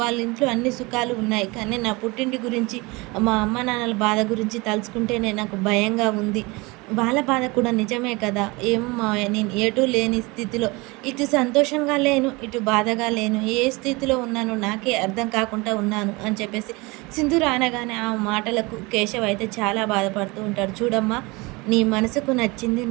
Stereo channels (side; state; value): left; quieter; 25.0 dB